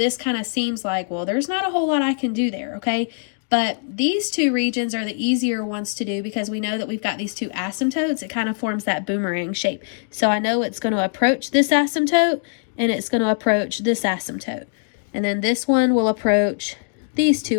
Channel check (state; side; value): silent; right; digital silence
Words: kind of seems like, well, there's not a whole lot I can do there, okay? But these two regions are the easier ones to do because we know that we've got these two asymptotes. It kind of forms that boomerang shape. So I know it's going to approach this asymptote, and it's going to approach this asymptote. And then this one will approach these two